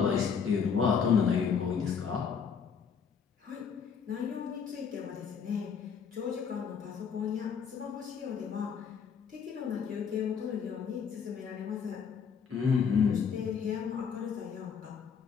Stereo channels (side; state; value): right; quieter; 6.6 dB